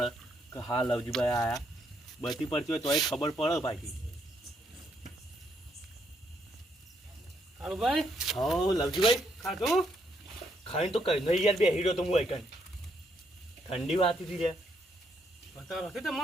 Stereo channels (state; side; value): normal; both; correlation 0.74